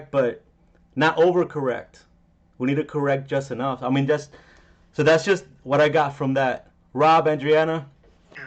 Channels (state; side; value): identical; both; correlation 1.00